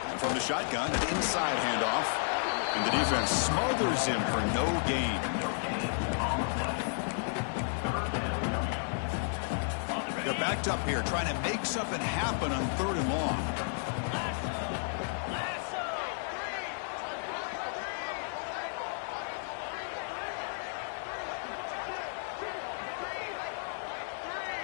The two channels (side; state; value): right; silent; digital silence